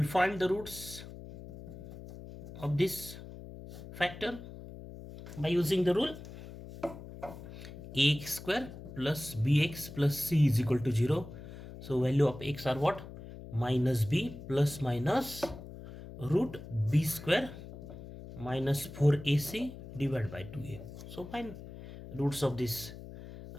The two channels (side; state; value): left; noise; hum, 13 dB below the sound